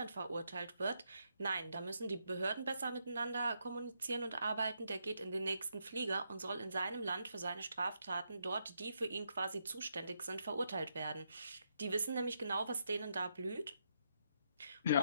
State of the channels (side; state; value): both; inverted; correlation -0.79